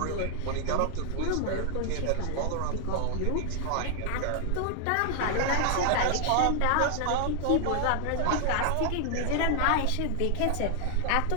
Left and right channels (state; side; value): different; both; correlation 0.00